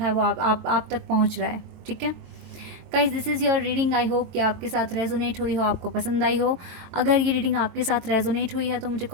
है वो आप तक पहुँच रहा है। ठीक है guys, this is your reading. I hope कि आपके साथ रेजोनेट हुई हो, आपको पसंद आई हो। अगर ये रीडिंग आपके साथ रेजोनेट हुई है तो मुझे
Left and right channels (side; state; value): left; late; 23 ms